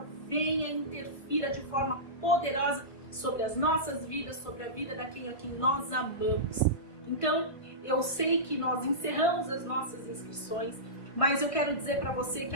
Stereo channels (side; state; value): right; late; 1.5 ms